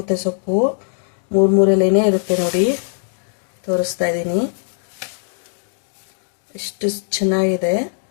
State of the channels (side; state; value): right; silent; digital silence